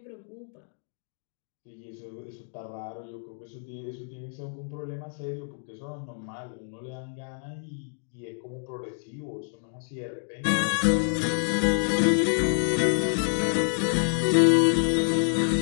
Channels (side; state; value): right; silent; digital silence